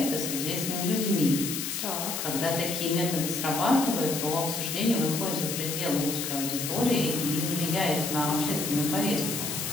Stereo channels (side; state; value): left; noise; hiss, 3 dB below the sound